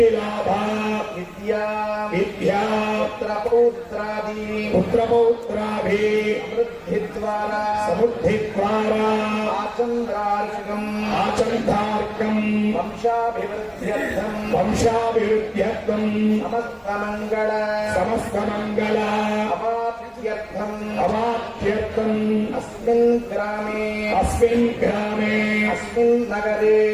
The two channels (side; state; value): both; identical; correlation 1.00